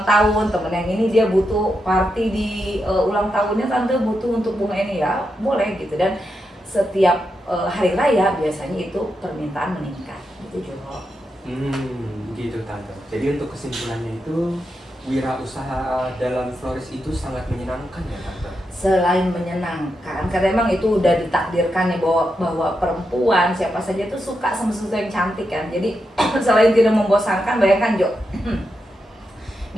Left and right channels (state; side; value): normal; both; correlation 0.85